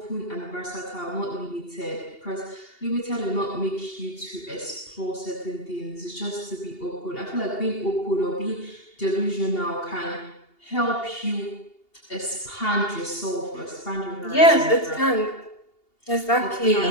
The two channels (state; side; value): late; right; 2.8 ms